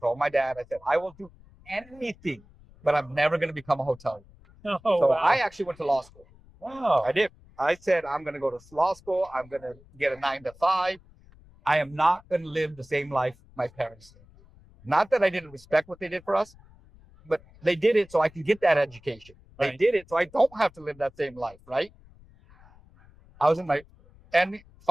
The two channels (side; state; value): left; noise; rumble, 26 dB below the sound